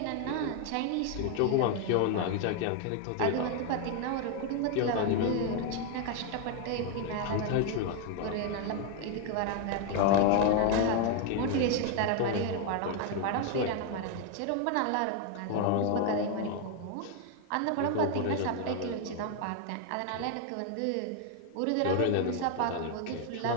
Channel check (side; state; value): both; different; correlation 0.01